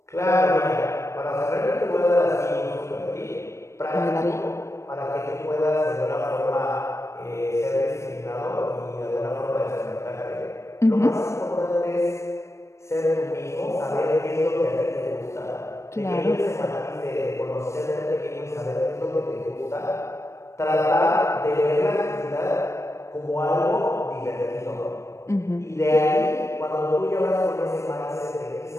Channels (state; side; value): late; right; 0.14 ms